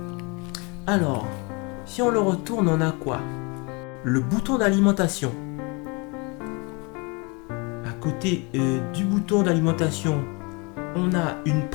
Alors, si on le retourne, on a quoi? Le bouton d'alimentation. À côté du bouton d'alimentation, on a une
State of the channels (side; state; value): right; quieter; 29.9 dB